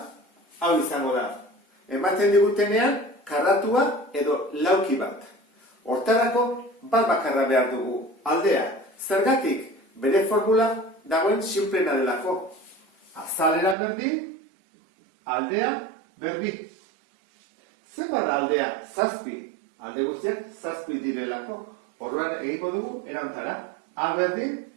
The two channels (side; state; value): left; drops out; at 13.8 s